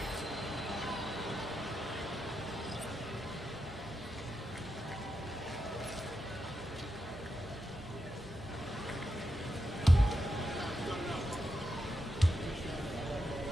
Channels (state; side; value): normal; both; correlation 0.86